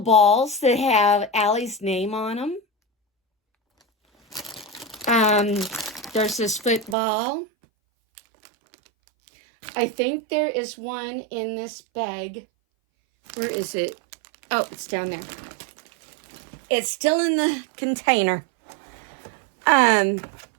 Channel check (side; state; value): left; drops out; at 7.0 s